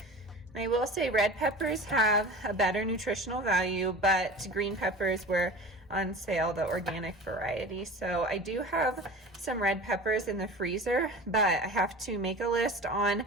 I will say red peppers have a better nutritional value, but green peppers were on sale, the organic variety. So I do have some red peppers in the freezer, but I have to make a list on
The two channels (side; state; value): both; normal; correlation 0.36